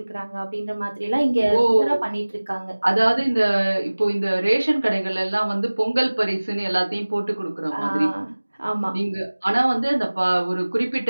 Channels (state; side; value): inverted; both; correlation -1.00